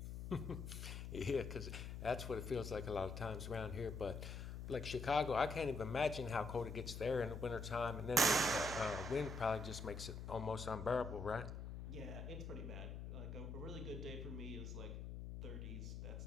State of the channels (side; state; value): left; noise; hum, 6 dB below the sound